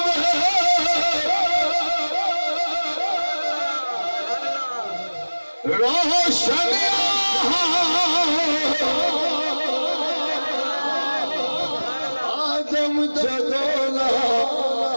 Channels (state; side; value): inverted; both; correlation -1.00